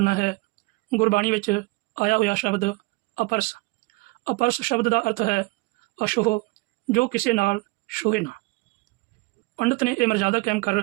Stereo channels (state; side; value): quieter; left; 24.3 dB